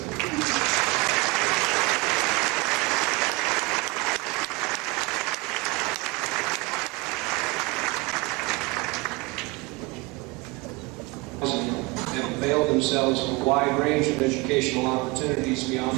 Have availed themselves of a wide range of educational opportunities beyond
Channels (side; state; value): left; quieter; 24.6 dB